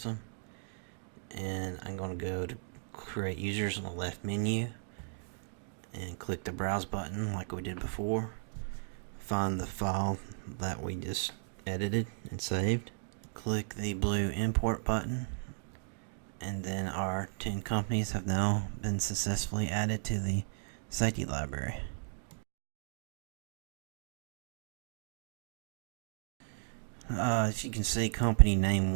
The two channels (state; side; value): silent; left; digital silence